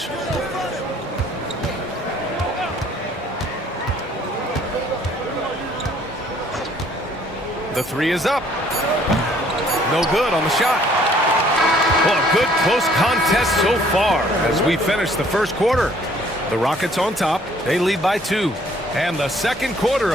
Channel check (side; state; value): both; normal; correlation 0.60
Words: The 3 is up. No good on the shot. Well, a good close contest so far as we finish the first quarter. The Rockets on top. They lead by 2. And the second quarter